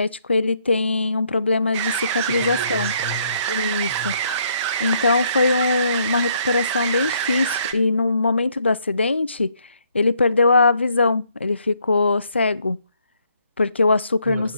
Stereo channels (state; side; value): inverted; both; correlation -0.70